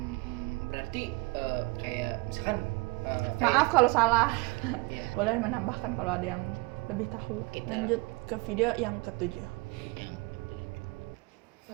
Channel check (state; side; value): quieter; left; 26.0 dB